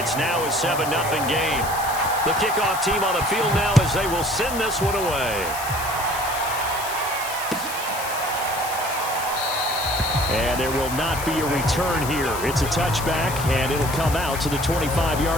it's now a 7-0 game. The kickoff team on the field now as they will send this one away. And there will not be a return here. It's a touchback, and it'll come out to the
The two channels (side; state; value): left; noise; hiss, 9 dB below the sound